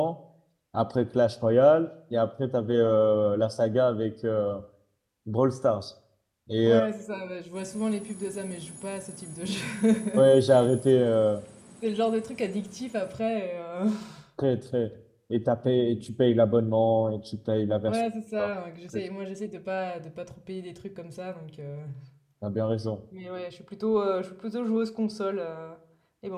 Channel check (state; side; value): identical; both; correlation 1.00